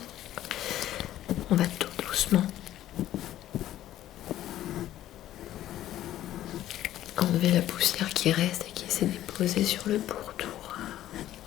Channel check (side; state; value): right; quieter; 13.1 dB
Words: on va tout doucement enlever la poussière qui reste et qui s'est déposée sur le pourtour.